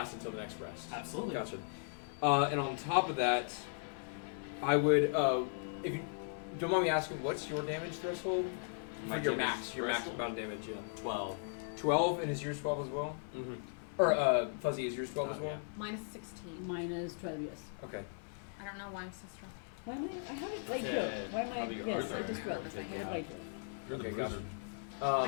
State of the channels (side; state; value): right; silent; 53 dB below the other